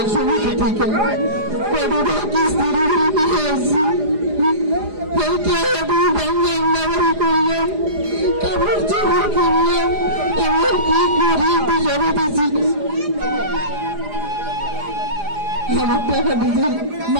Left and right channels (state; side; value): late; left; 4.9 ms